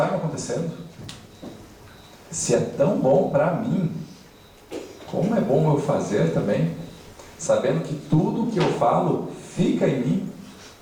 me acontecendo. Se é tão bom para mim, como é bom eu fazer também, sabendo que tudo que eu falo fica em mim,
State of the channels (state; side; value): identical; both; correlation 1.00